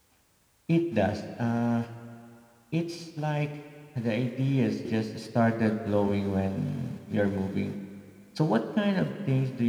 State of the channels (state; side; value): identical; both; correlation 1.00